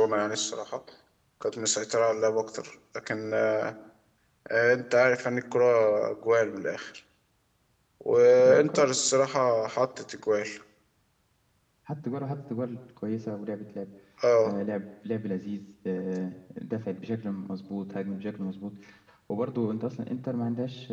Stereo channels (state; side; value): identical; both; correlation 1.00